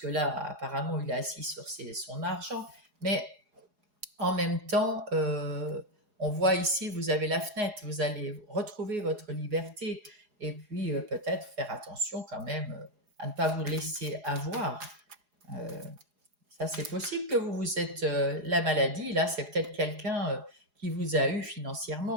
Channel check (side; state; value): left; late; 4.8 ms